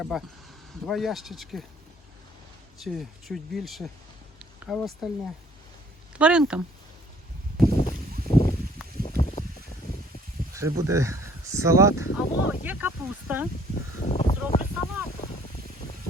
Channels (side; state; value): both; normal; correlation 0.59